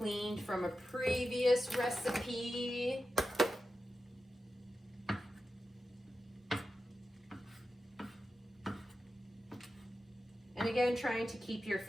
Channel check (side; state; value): both; normal; correlation 0.91